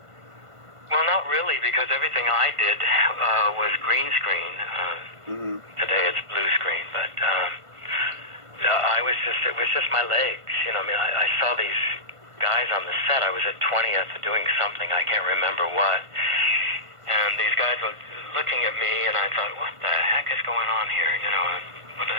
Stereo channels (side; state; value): left; late; 1.5 ms